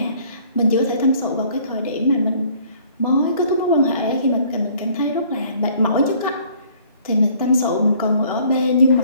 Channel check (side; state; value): both; inverted; correlation -0.58